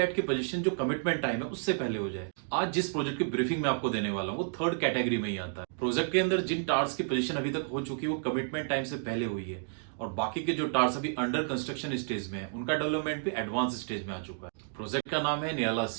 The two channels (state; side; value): silent; left; digital silence